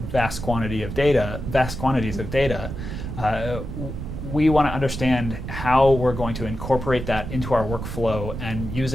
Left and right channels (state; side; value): noise; right; rumble, 7 dB below the sound